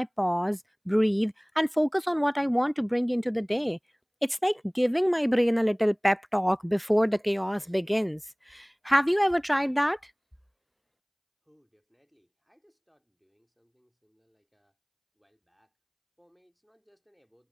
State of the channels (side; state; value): both; identical; correlation 1.00